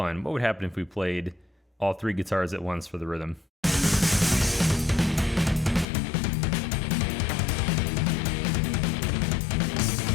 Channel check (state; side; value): drops out; right; at 5.9 s